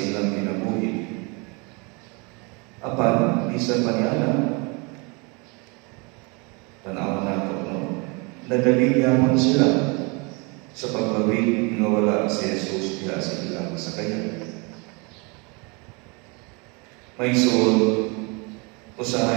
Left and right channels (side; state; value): left; quieter; 30.4 dB